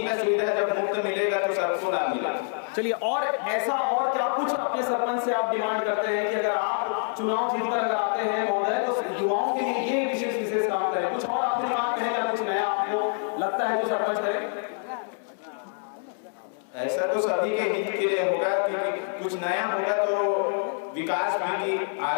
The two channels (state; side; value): silent; right; 61 dB below the other